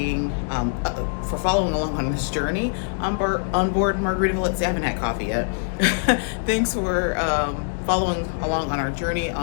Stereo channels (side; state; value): right; silent; digital silence